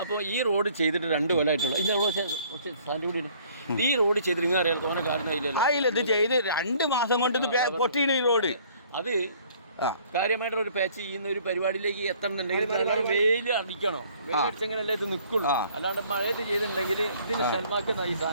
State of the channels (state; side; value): inverted; both; correlation -0.57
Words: അപ്പോൾ ഈ റോഡ് ചെയ്തിട്ട് 2 കൊല്ലമായിട്ടുള്ള ഈ റോഡ് ചെയ്തിട്ട് നിങ്ങൾ അറിയാലോ തോന്നെ കാരണം ഇത് ചെയ്ത് 2 മാസം കൊണ്ട് ഇത് പൊട്ടിയാണ് ഈ റോഡ്. അത് കാര്യമായിട്ടൊരു പാച്ച് ചെയ്യുന്ന ഒരു പരിപാടിയിലേക്ക് എത്തണമെന്നുണ്ടെങ്കിൽ വെയിൽ അടിക്കണോ? വെയിലടിച്ചെങ്കിലല്ലേ ഇത് നിൽക്കുള്ളൂ. അല്ലാണ്ട് മഴയത്ത് ചെയ്തിട്ടുണ്ടെങ്കിൽ ഇതിന് ഷൽമാക്കുന്ന ഈ